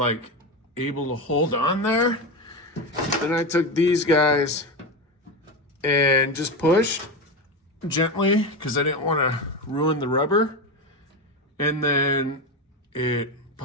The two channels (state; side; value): normal; both; correlation 0.18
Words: able to hold on there, then I took these guys and just pushed gently because I didn't want to ruin the rubber, and then it